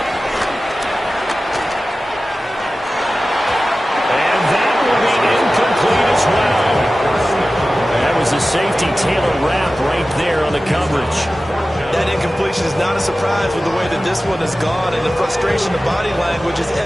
And that will be incomplete as well. That was a safety Taylor wrap right there on the coverage. That incompletion is not a surprise with the way that this one has gone, and the frustration of body language is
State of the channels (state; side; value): normal; both; correlation 0.95